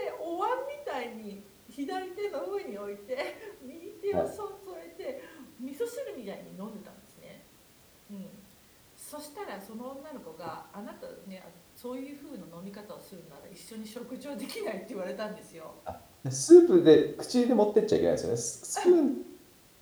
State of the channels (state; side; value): identical; both; correlation 1.00